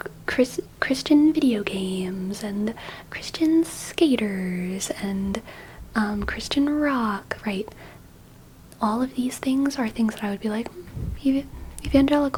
video games and Christian skaters and Christian rock, right? All of these things are things that I would be like,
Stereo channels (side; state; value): both; identical; correlation 1.00